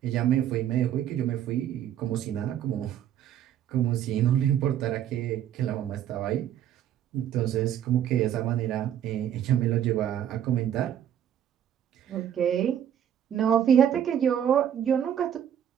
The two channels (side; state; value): left; quieter; 10.1 dB